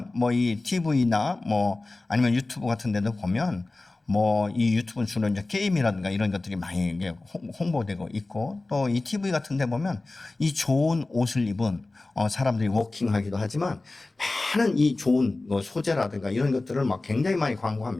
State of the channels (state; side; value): quieter; right; 3.1 dB